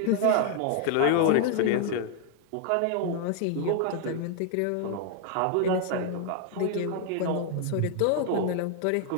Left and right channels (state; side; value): different; both; correlation 0.00